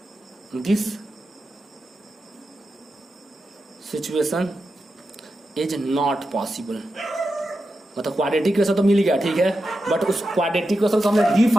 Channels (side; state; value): both; normal; correlation 0.89